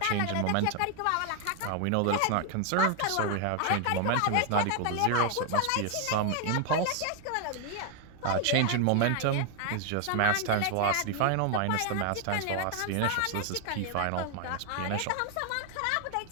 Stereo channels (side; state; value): both; different; correlation 0.00